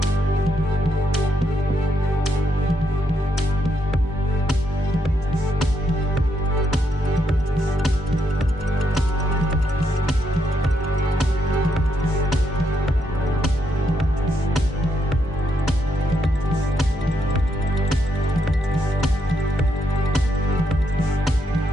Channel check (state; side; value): normal; both; correlation 0.78